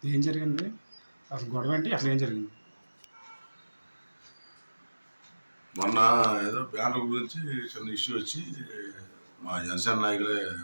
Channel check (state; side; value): inverted; both; correlation -1.00